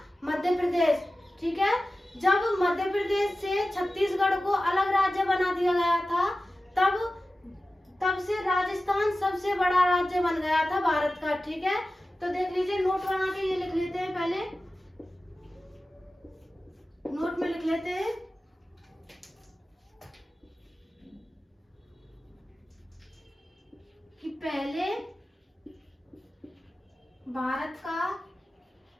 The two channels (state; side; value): normal; both; correlation 0.95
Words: मध्य प्रदेश, ठीक है। जब मध्य प्रदेश से छत्तीसगढ़ को अलग राज्य बना दिया गया था, तब से राजस्थान सबसे बड़ा राज्य बन गया था भारत का, ठीक है। तो देख लीजिए, नोट बना के ये लिख लेते हैं, पहले नोट में लिख लेते हैं